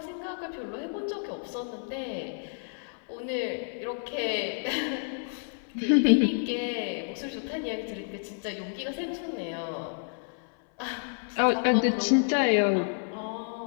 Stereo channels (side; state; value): right; silent; 58 dB below the other